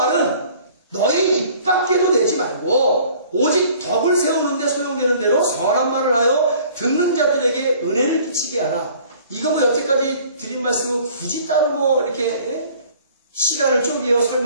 너희 입 밖에도 내지 말고 오직 덕을 세우는 데 소용되는 대로 선한 말을 하여 듣는 자들에게 은혜를 끼치게 하라. 이거 뭐 여태까지 드린 말씀은 굳이 따로 뭐 이렇게 시간을 쪼개어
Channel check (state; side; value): inverted; both; correlation -0.52